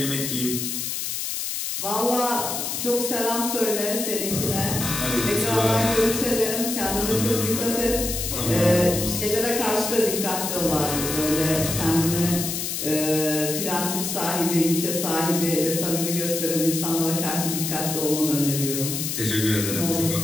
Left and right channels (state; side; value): noise; left; hiss, 3 dB below the sound